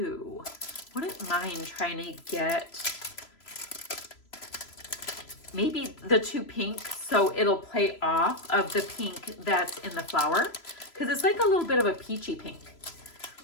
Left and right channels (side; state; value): right; late; 3.0 ms